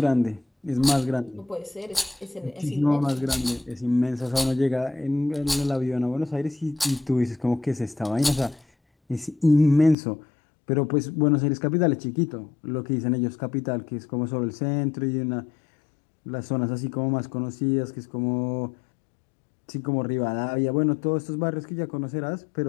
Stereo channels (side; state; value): right; drops out; at 10.0 s